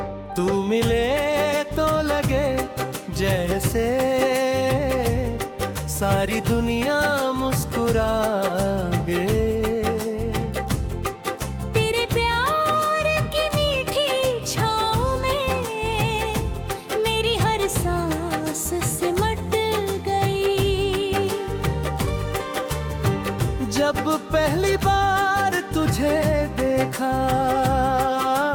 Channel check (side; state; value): both; identical; correlation 1.00